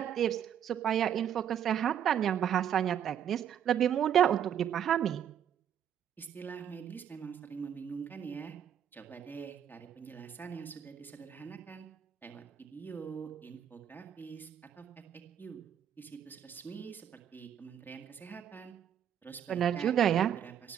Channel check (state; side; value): quieter; left; 9.4 dB